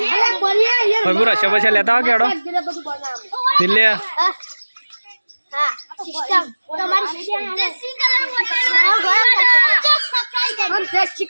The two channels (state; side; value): inverted; both; correlation -1.00